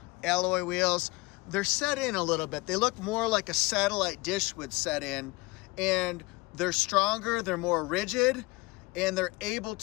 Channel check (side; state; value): right; quieter; 23.6 dB